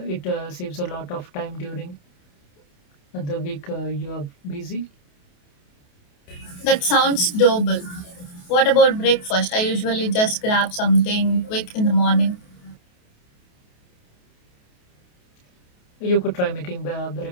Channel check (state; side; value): late; right; 28 ms